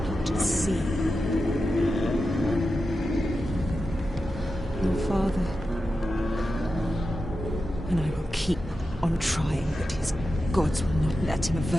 see. Your father and I will keep on trying, but his gods will not let him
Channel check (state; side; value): normal; both; correlation 0.91